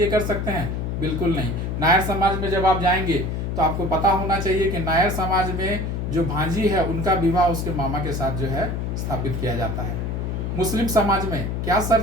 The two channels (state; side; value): noise; left; hum, 2 dB below the sound